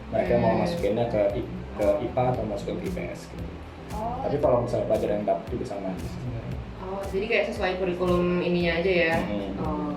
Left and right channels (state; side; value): identical; both; correlation 1.00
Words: Mereka mau masukinnya ke IPA atau masukin ke IPS gitu. Tapi kalau misalnya pelajaran yang dapat juga sama aja sih sebenarnya. Oh, jadi kayak sesuai kurikulum ininya aja ya?